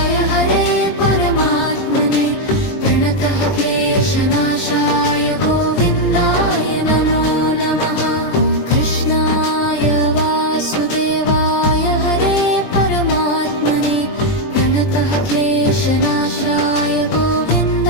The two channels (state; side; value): late; right; 20 ms